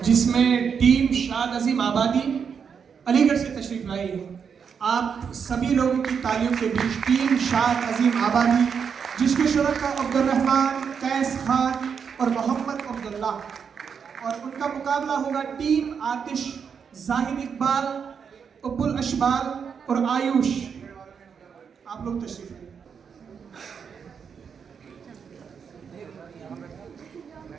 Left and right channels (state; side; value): quieter; left; 6.7 dB